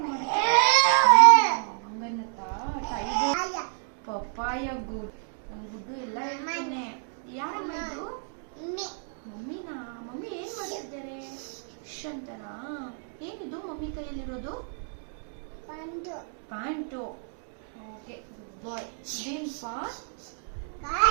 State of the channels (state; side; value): silent; left; 59 dB below the other